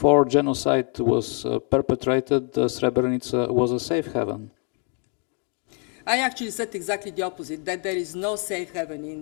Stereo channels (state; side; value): quieter; right; 39.9 dB